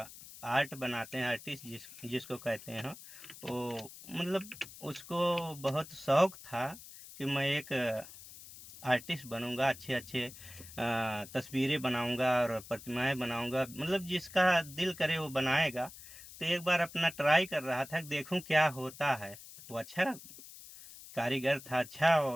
आर्ट बनाते हैं, आर्टिस्ट जिसको कहते हैं, वो मतलब उसको बहुत शौक था कि मैं एक आर्टिस्ट बनूंगा, अच्छे अच्छे तस्वीरें बनाऊंगा और प्रतिमाएं बनाऊंगा, मतलब जिसका दिल करे वो बनाएगा। तो एक बार अपना ट्राई कर रहा था, देखूं क्या होता है। वो अच्छा कारीगर था, अच्छा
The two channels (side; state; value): left; noise; hiss, 16 dB below the sound